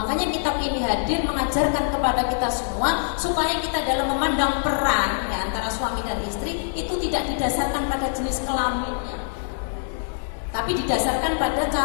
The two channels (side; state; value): right; silent; digital silence